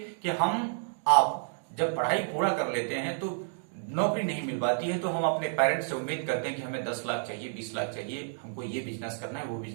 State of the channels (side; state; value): left; silent; digital silence